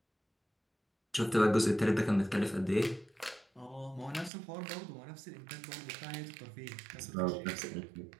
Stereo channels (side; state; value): left; drops out; at 4.3 s